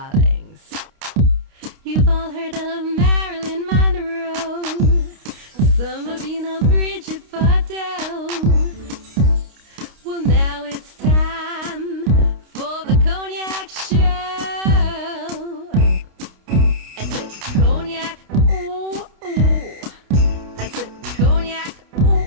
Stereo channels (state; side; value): late; left; 29 ms